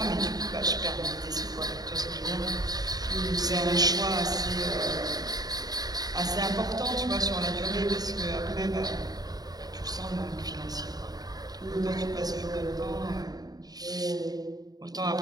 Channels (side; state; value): left; late; 0.19 ms